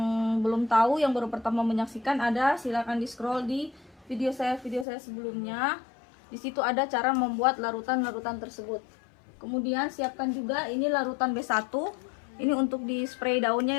belum tahu, yang baru pertama menyaksikan, silakan di scroll di video saya sebelumnya. Di situ ada cara membuat larutan-larutan tersebut. Kemudian siapkan juga ini larutan B1. Ini untuk di spray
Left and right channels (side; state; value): right; drops out; at 4.9 s